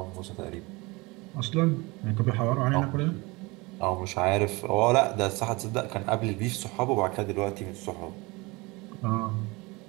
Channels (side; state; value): left; quieter; 24.5 dB